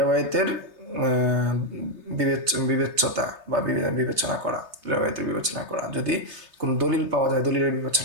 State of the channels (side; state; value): left; late; 3.3 ms